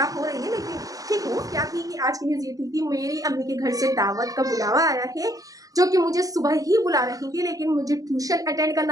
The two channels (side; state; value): left; late; 0.17 ms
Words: हो रही है, लेकिन ठीक हूँ। क्या थी कि आज की न्यूज़ ये थी कि मेरी अम्मी के घर से दावत का बुलावा आया है, जो कि मुझे सुबह ही बुला रही थी, लेकिन मुझे ट्यूशन अटेंड